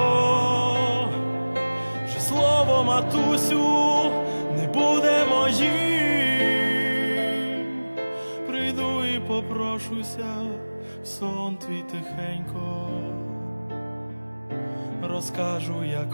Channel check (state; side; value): inverted; both; correlation -1.00